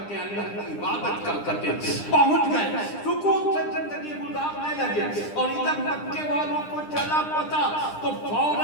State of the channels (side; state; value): right; late; 9.9 ms